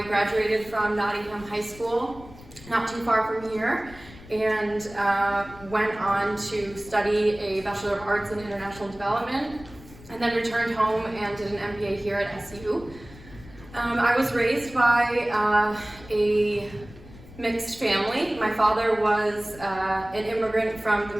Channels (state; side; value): noise; left; rumble, 19 dB below the sound